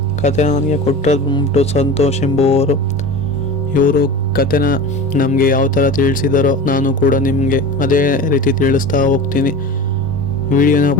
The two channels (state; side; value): normal; both; correlation 0.32